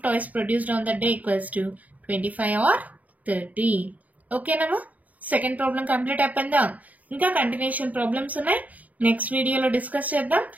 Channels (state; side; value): late; left; 0.074 ms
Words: toys produced on the day equals to 25 or 30. ఓకేనమ్మా? సెకండ్ ప్రాబ్లం కంప్లీట్ అయిపోయిందా? ఇంకా కంటిన్యూషన్ ప్రాబ్లమ్స్ ఉన్నాయి, నెక్స్ట్ వీడియోలో డిస్కస్ చేద్దాం.